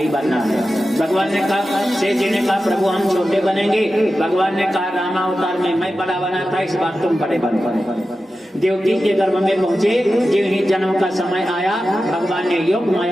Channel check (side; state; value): both; normal; correlation 0.92